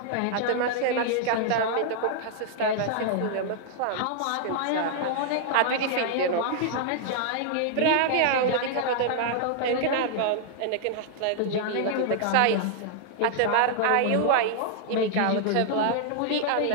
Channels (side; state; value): both; different; correlation -0.01